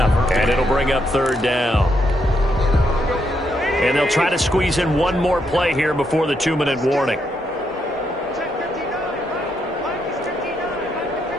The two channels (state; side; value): normal; both; correlation 0.78